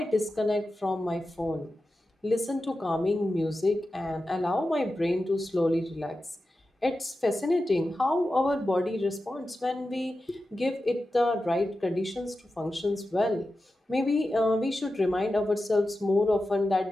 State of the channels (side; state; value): both; normal; correlation 0.92